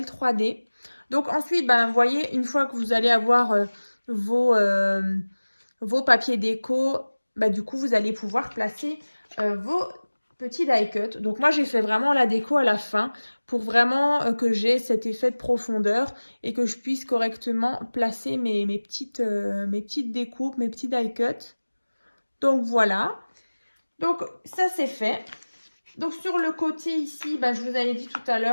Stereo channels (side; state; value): both; inverted; correlation -1.00